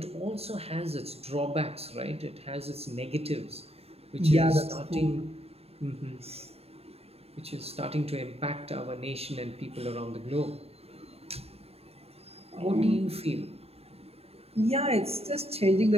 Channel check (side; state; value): left; late; 0.29 ms